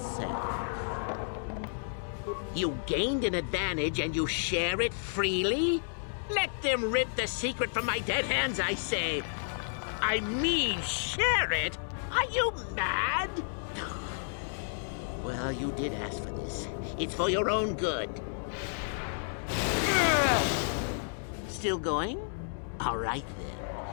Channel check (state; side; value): silent; right; digital silence